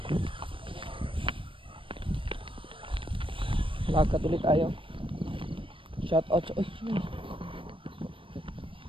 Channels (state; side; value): late; left; 0.25 ms